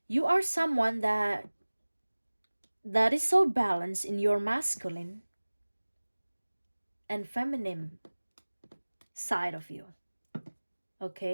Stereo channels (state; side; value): inverted; both; correlation -1.00